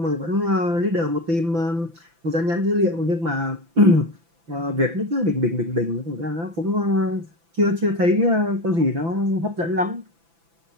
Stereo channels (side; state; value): left; late; 5.9 ms